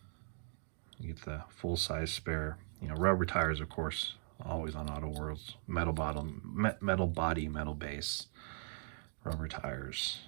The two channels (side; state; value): left; silent; 52 dB below the other